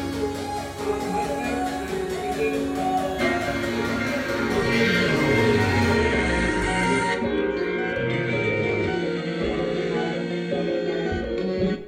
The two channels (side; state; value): both; identical; correlation 1.00